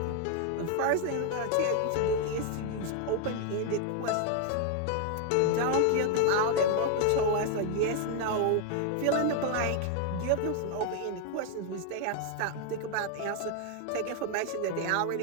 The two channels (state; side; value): different; both; correlation 0.00